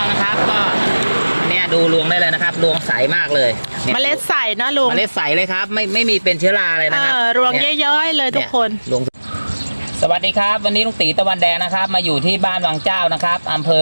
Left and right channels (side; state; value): both; inverted; correlation -1.00